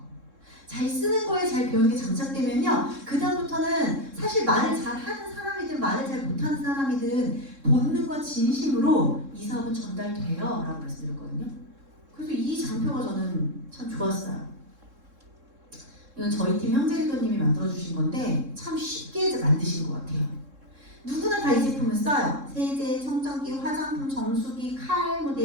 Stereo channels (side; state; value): left; late; 3.7 ms